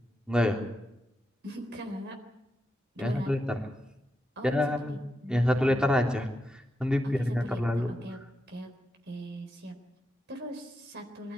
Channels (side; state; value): both; normal; correlation 0.86